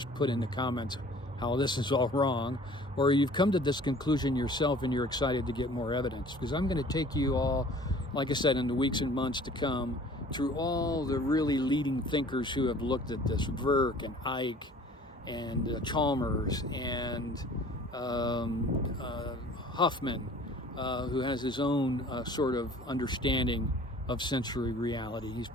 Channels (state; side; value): normal; both; correlation 0.49